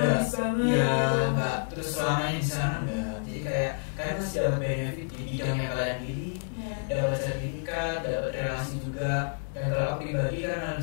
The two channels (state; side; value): silent; right; digital silence